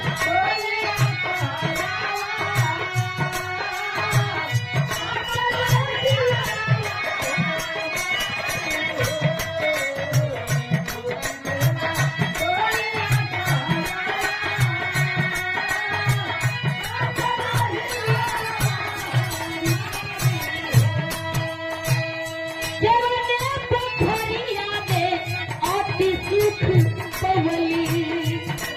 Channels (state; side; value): identical; both; correlation 1.00